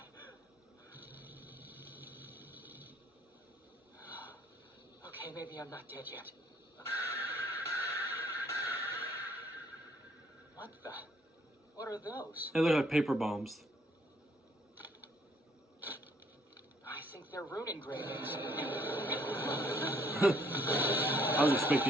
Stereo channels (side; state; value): both; normal; correlation 0.64